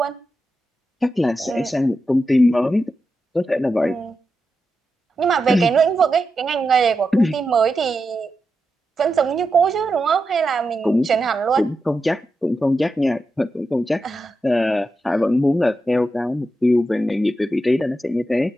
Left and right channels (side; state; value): both; normal; correlation 0.88